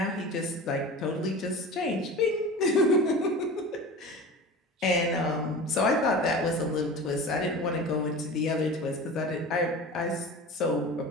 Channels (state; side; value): normal; both; correlation 0.34